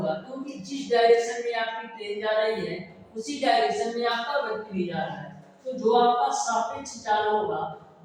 क्योंकि जिस डायरेक्शन में आपकी ट्रेन जा रही है उसी डायरेक्शन में आपका व्यक्ति भी जा रहा है। तो जो आपका सापेक्ष चाल होगा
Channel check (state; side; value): identical; both; correlation 1.00